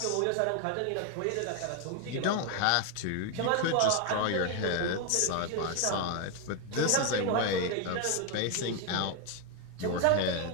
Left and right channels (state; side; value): different; both; correlation 0.01